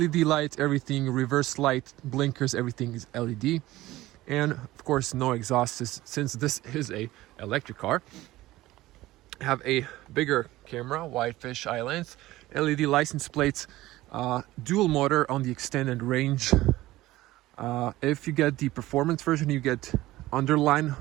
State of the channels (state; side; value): quieter; left; 17.0 dB